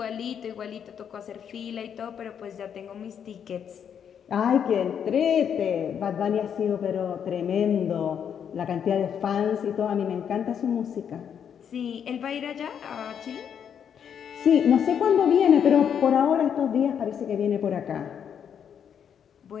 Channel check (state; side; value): quieter; right; 8.1 dB